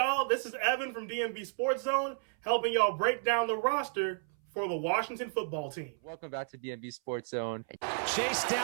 This is Evan from DMV Sports Zone, helping y'all break down the roster for the Washington football team. Welcome back to DMV Sports Zone. Chased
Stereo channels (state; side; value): silent; left; 56 dB below the other